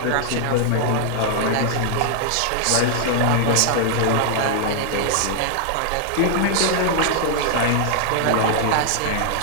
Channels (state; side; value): different; both; correlation -0.01